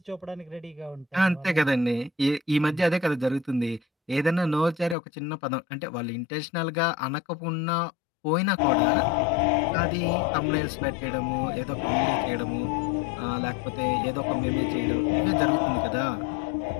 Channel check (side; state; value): right; drops out; at 5.0 s